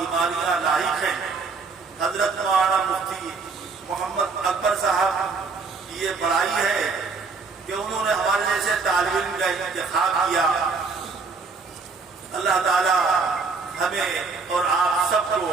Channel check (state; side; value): quieter; left; 4.6 dB